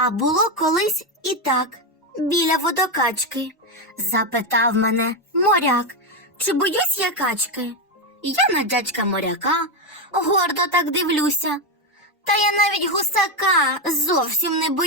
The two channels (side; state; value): both; normal; correlation 0.09